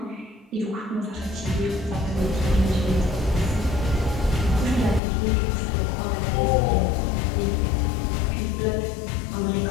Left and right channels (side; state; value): right; drops out; at 5.0 s